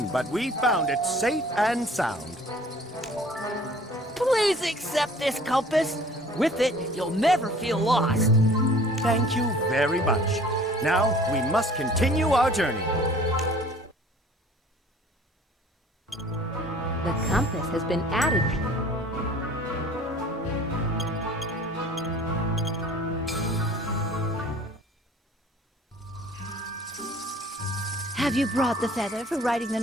but we found it safe and sound. Please accept this compass. With it, you'll never feel lost. Thank you very much. Now, we must continue our journey. The compass has been added. Have you brought the feather for writing the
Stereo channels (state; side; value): normal; both; correlation 0.50